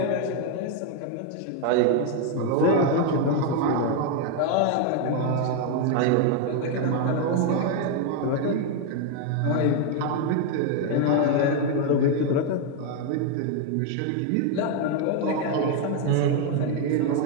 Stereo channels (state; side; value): different; both; correlation 0.01